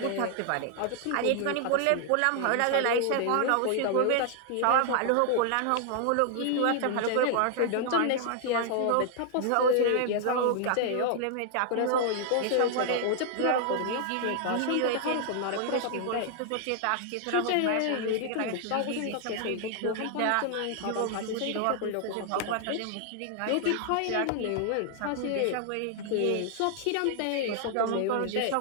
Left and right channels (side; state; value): both; different; correlation 0.00